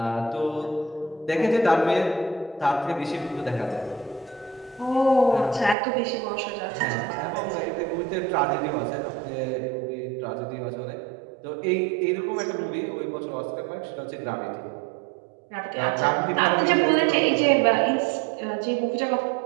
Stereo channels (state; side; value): drops out; left; at 5.8 s